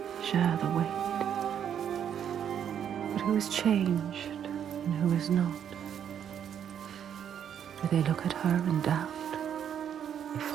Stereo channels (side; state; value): left; quieter; 8.9 dB